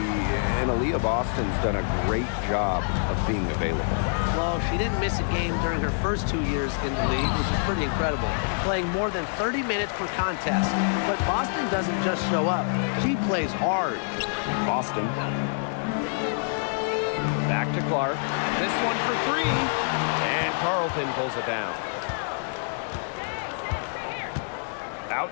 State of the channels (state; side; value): silent; right; digital silence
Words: and Aaliyah Boston's done a great job of being available. Well, she didn't miss a game during her first 2 years in the league, which is pretty incredible, playing more than 30 minutes per contest. But Boston doesn't just show up. She plays hard. Boston. Back to Clark. This one for three. And Carlton pulls it down.